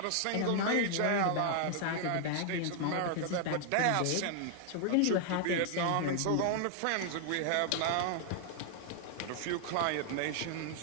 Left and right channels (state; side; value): different; both; correlation 0.00